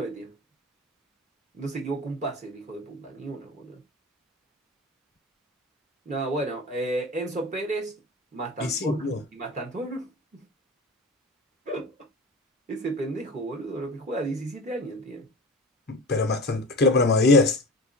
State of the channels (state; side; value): normal; both; correlation 0.33